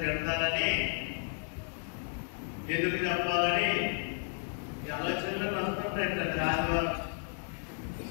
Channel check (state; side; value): silent; right; 56 dB below the other